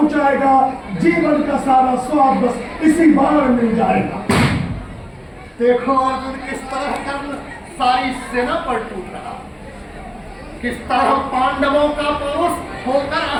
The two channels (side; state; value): both; identical; correlation 1.00